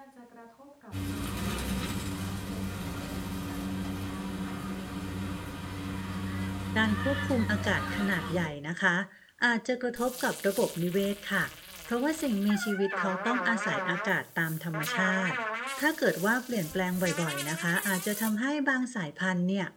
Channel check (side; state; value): both; identical; correlation 1.00